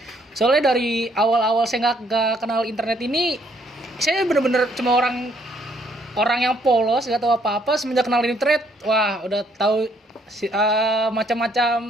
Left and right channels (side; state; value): both; normal; correlation 0.67